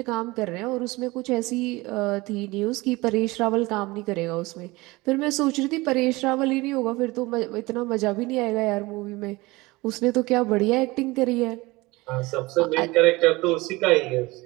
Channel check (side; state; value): left; quieter; 21.9 dB